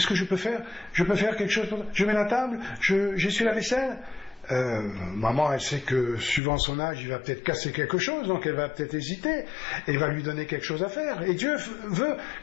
que je peux faire? Je peux faire quelque chose pour toi? Je mets la table? J'essuie la vaisselle? Maman, elle sait que suivant son âge, il va peut-être casser quelque chose, donc elle va peut-être hésiter, et va lui donner quelque chose à faire. Et Dieu veut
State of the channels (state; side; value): drops out; right; at 6.4 s